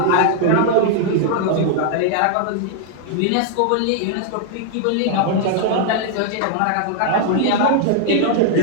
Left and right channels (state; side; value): different; both; correlation -0.01